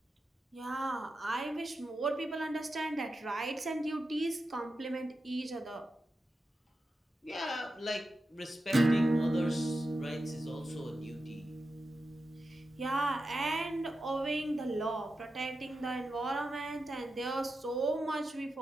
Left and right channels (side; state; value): both; normal; correlation 0.90